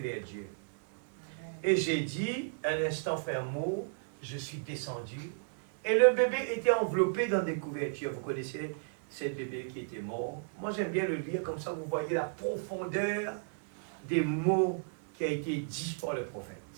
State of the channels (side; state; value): left; silent; digital silence